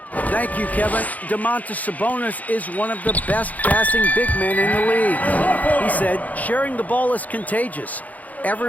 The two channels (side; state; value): right; late; 0.077 ms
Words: Thank you, Kevin. Domantas Sabonis is one of the best passing big men in the league. He said, sharing the ball is contagious.